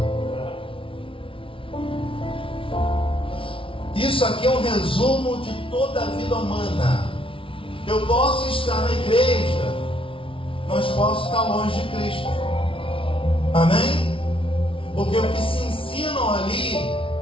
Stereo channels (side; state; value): right; late; 0.25 ms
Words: Isso aqui é um resumo de toda a vida humana. Eu posso estar na igreja, mas posso estar longe de Cristo. Amém? Porque o que se ensinam ali